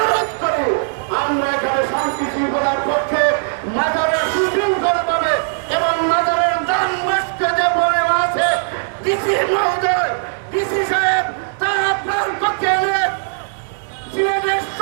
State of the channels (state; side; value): silent; left; 67 dB below the other